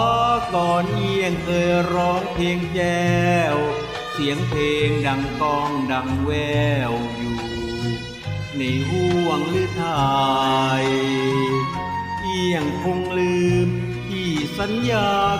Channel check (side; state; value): both; identical; correlation 1.00